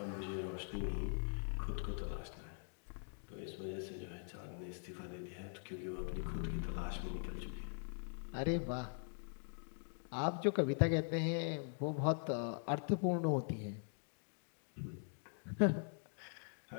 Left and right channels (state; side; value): silent; right; digital silence